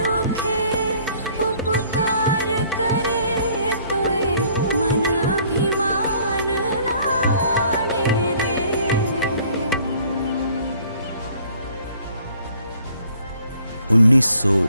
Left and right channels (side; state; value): both; inverted; correlation -0.58